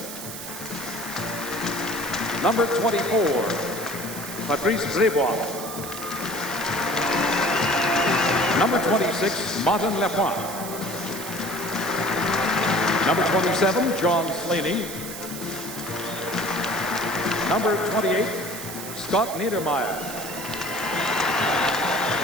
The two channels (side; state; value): right; noise; hiss, 10 dB below the sound